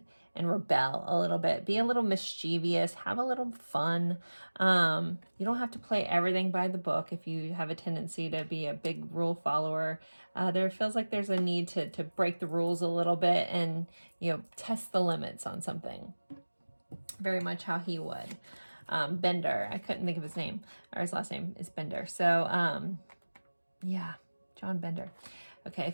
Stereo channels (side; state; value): both; inverted; correlation -1.00